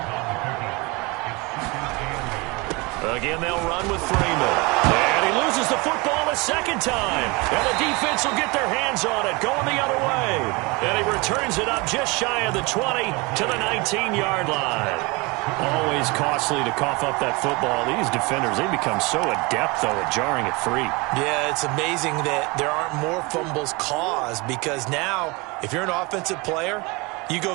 Again, they'll run with Freeman. And he loses the football a second time. And the defense will get their hands on it, going the other way. And he returns it up just shy of the 20 to the 19-yard line. Always costly to cough up that football. These defenders, they become so adept, though, at jarring it free. Yeah, it's amazing that there aren't more fumbles caused because now, if you're an offensive player, you go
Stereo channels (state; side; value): quieter; left; 26.1 dB